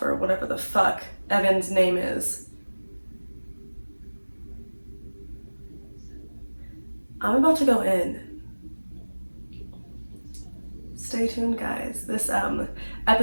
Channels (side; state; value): both; inverted; correlation -1.00